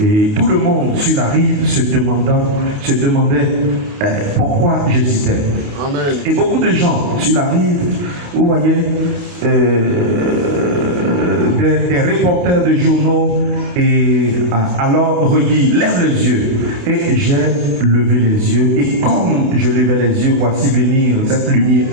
tout le monde sur la rive se demandait pourquoi j'hésitais. Amen. Et beaucoup de gens sur la rive, vous voyez, des reporters de journaux et alors redit lève les yeux et j'ai levé les yeux et comme je levais les yeux, voici venir cette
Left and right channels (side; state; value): left; late; 28 ms